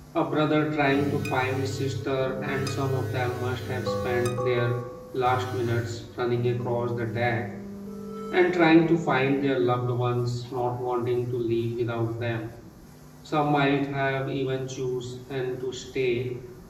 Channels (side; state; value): both; identical; correlation 1.00